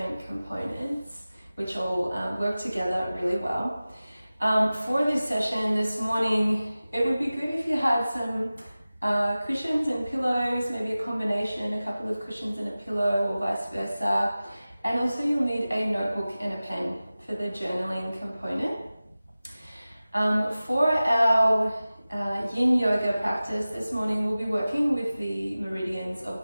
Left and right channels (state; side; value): inverted; both; correlation -0.97